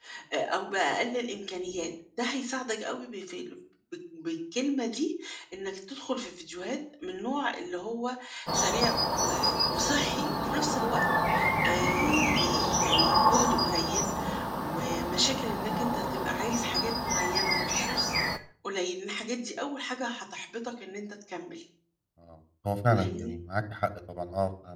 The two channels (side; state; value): both; identical; correlation 1.00